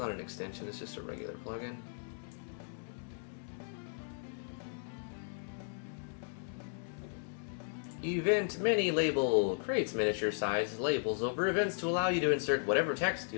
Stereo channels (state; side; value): silent; right; digital silence